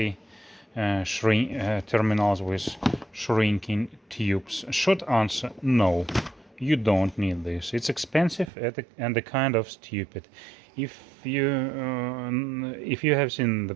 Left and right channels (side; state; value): left; drops out; at 8.5 s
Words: terminals with shrinking tubes. Short answer: no, you don't need this. It's expensive and a kind of stupid. If you have seen the